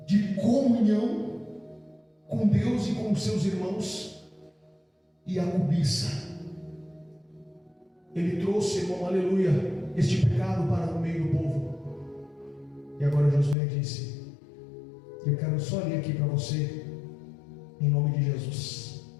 de comunhão com Deus e com os seus irmãos, e a cobiça. Ele trouxe, irmão, aleluia, este pecado para o meio do povo. E agora Josué disse: eu quero só ler aqui para você, em nome de Jesus.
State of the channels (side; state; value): right; drops out; at 13.6 s